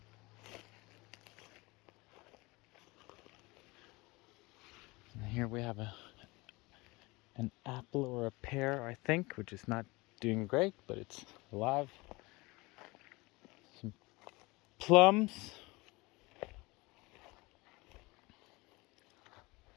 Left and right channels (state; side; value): quieter; right; 23.7 dB